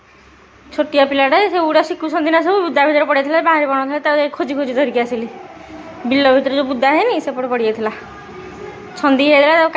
छोटिया पिलाटे से उड़ा शिखुंट ना सब बुदा भितर पड़ जाता बाहर बन था खोजी खोजी धरिकी आसिली बिल भितर जो बुदा है सेपटे पड़ जाता छंदी होता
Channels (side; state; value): both; identical; correlation 1.00